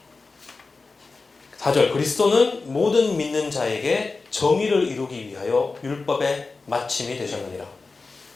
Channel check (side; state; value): right; quieter; 3.9 dB